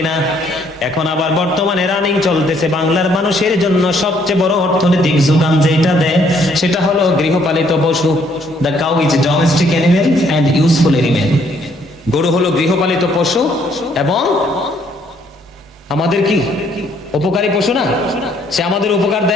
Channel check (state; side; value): normal; both; correlation 0.66